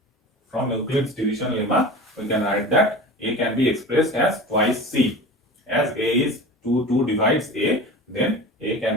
From Euclid's division lemma, we can write that a can be expressed as twice c. As a is 2 divides a, then a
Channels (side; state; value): both; normal; correlation 0.34